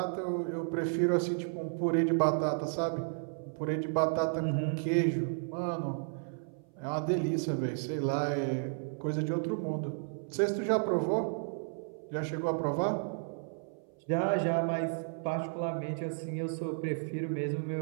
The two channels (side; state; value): left; silent; 56 dB below the other